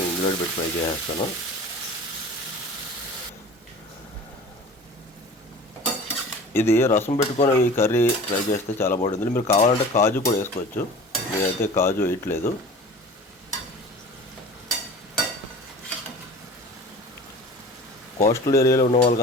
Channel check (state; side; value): normal; both; correlation 0.40